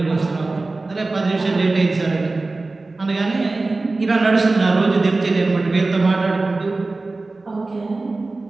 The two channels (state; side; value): quieter; left; 3.4 dB